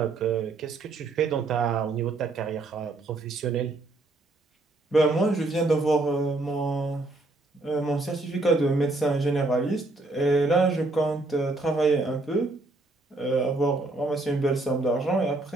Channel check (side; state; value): left; quieter; 3.1 dB